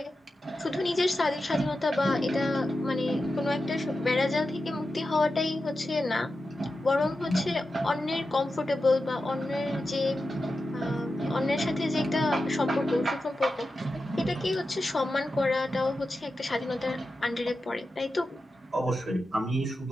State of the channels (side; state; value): both; normal; correlation 0.91